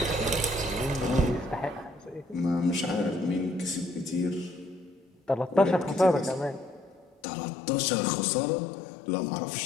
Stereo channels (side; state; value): right; drops out; at 7.2 s